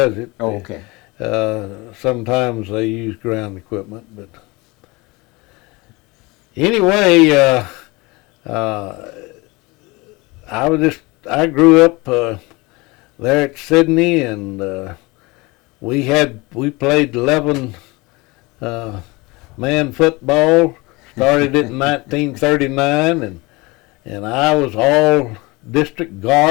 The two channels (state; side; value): quieter; right; 24.1 dB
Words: it. Sometimes they use ground equipment, but anyway. I grew up there at Sydney, and we played 11 man football. Started it in 1939, and I was all district